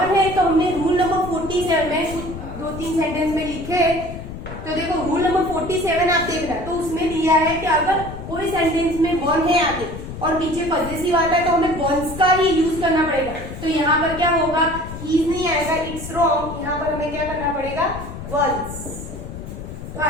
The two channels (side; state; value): left; noise; rumble, 10 dB below the sound